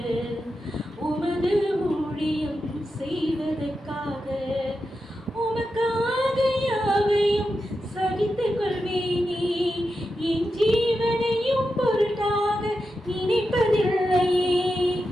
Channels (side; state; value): both; normal; correlation 0.89